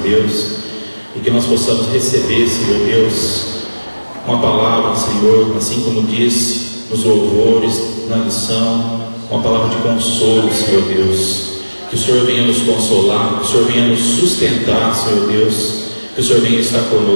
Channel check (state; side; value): inverted; both; correlation -1.00